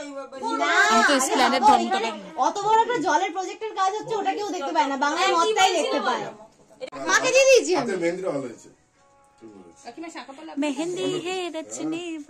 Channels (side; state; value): both; identical; correlation 1.00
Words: না, আমি তো এসপ্ল্যানেড দেখো, ধর্মতলা। এখানে অত বড় একটা জলের প্রজেক্টের কাজ হচ্ছে, ওটা কেউ দেখতে পায় না, বাংলা মদটাই দেখতে পায়। মাকে দিয়ে দিয়েছি আমি। হাতে মেহেন্দিটা ভালো হয়েছে। মেহেন্দি হে রচনে।